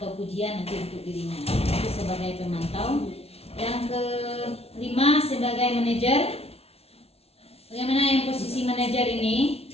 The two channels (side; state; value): right; late; 0.30 ms